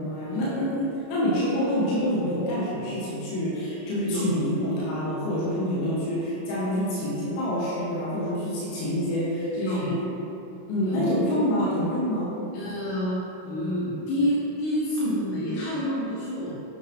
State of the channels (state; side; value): late; right; 32 ms